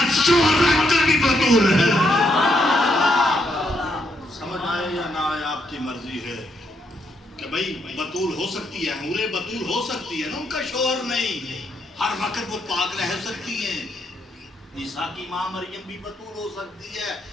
شوہر رکھ کر بھی بطول ہے۔ سمجھ آئے یا نہ آئے آپ کی مرضی ہے کہ بھئی بطول ہو سکتی ہے، حورے بطول ہو سکتی ہے نا، ان کا شوہر نہیں، ہر وقت وہ پاک رہ سکتی ہیں۔ عیسیٰ کی ماں مریم بھی بطول ہو سکتی ہے،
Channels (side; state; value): both; normal; correlation 0.76